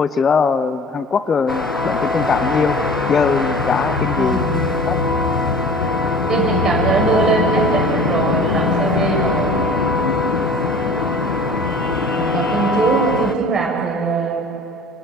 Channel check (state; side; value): normal; both; correlation 0.44